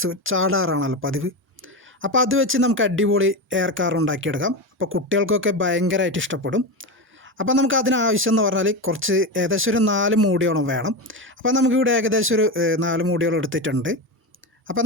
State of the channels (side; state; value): both; normal; correlation 0.18